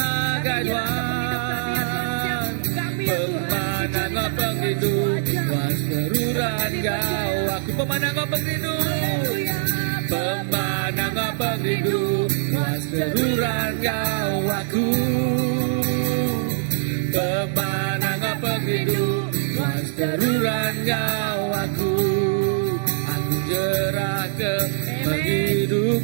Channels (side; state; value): left; silent; digital silence